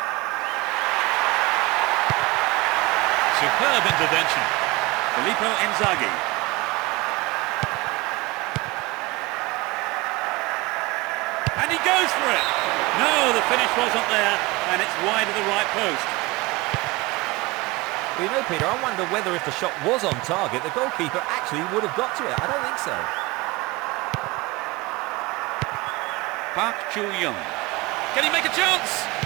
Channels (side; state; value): left; quieter; 22.4 dB